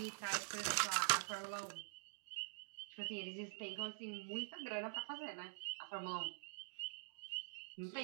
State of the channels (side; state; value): left; silent; digital silence